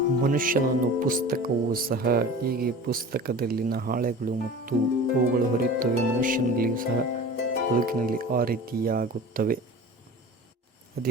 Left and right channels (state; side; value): normal; both; correlation 0.38